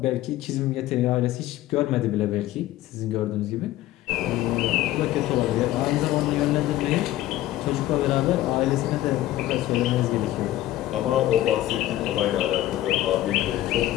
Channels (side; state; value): right; quieter; 14.7 dB